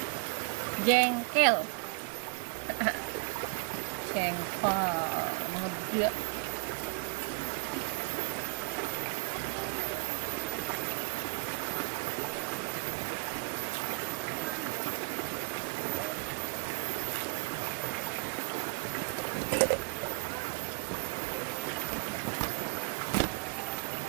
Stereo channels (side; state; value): left; quieter; 35.7 dB